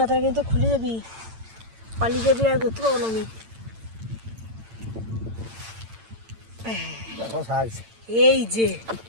তারা কিন্তু খুলে যাবি, পালিয়ে যাবি, আর ধরতে পাবো না আমি। দেখো সাইজ, এই যে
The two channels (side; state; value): left; late; 8.9 ms